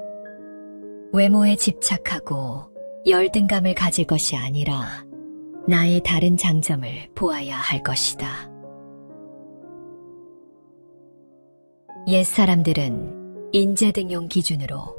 외모에 집착하고 열등감을 가질 것이 아니라 나의 다른 장점을 보아야 할 것이다. 옛사람들은 인재등용 기준으로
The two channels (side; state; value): both; inverted; correlation -1.00